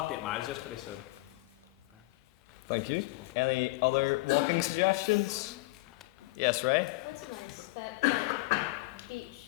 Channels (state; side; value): quieter; right; 22.5 dB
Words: 8 miles yesterday, so. Thank you. Any other walking suggestions? Yes, Ray? That's nice, that